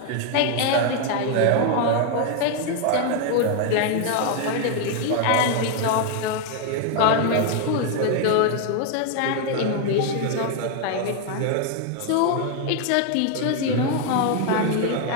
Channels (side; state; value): both; different; correlation 0.00